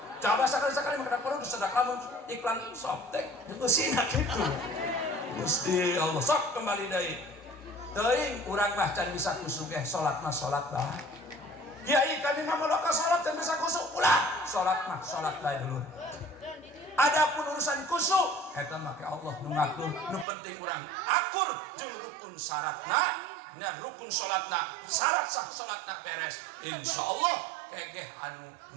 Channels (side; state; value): left; drops out; at 20.2 s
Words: Coba sakali-sakali mah kada perlu sedak lamun iklan sop teh geusina kitu. Gusti Allah sok kembali deui. Teuing urang mah can bisa kusugeh salat mah salat bae. Kiai kami mah maloka salat teh bisa kusuk ulah salat mah salat bae dulu. Adapun urusan kusuk eta mah ke Allah nu ngatur nu penting urang akur jeung rukun syaratna nya rukun salatna syarat sah salatna beres insyaallah kegeh anu